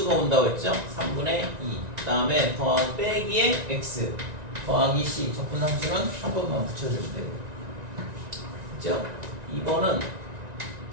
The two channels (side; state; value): left; late; 1.9 ms